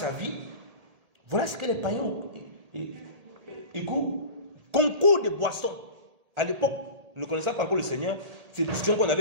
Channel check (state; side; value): late; left; 1.8 ms